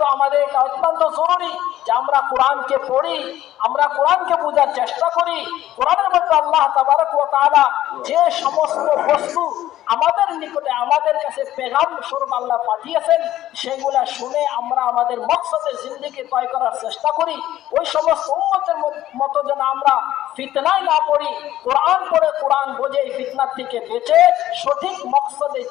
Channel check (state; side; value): quieter; right; 13.5 dB